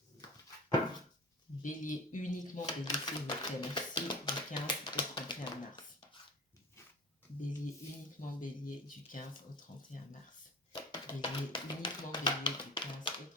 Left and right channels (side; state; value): both; normal; correlation 0.35